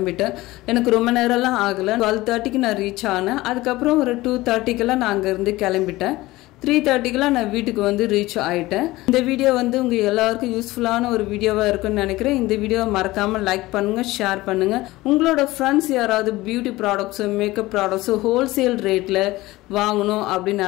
எனக்கு ரொம்ப நேரம்லாம் ஆகலை. 12:30க்கு நான் ரீச் ஆனேன். அதுக்கப்புறம் ஒரு 2:30க்கெல்லாம் நான் அங்கேருந்து கிளம்பிட்டேன். 3:30க்கெல்லாம் நான் வீட்டுக்கு வந்து ரீச் ஆகிட்டேன். இந்த வீடியோ வந்து உங்கள் எல்லாருக்கும் யூஸ்ஃபுல்லான ஒரு வீடியோவாக இருக்குன்னு நினைக்கிறேன். இந்த வீடியோவை மறக்காமல் லைக் பண்ணுங்கள், ஷேர் பண்ணுங்கள். உங்களோட ஃப்ரெண்ட்ஸ் யாராவது beauty products, makeup products wholesale ரேட்டில் வாங்கணும் அப்படின்னு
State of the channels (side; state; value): right; quieter; 18.8 dB